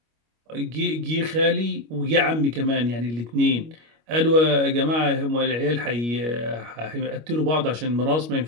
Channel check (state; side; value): late; left; 25 ms